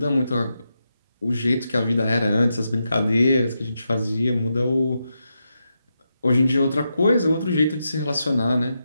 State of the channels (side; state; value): both; inverted; correlation -0.86